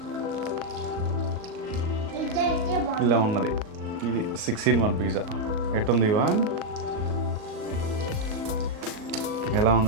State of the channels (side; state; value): left; late; 38 ms